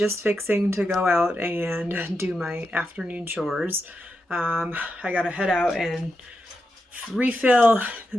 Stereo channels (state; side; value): normal; both; correlation 0.87